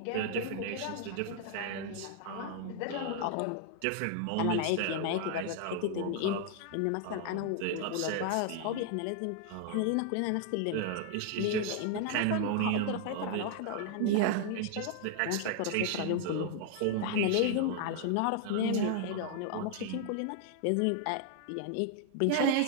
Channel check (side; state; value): both; different; correlation 0.00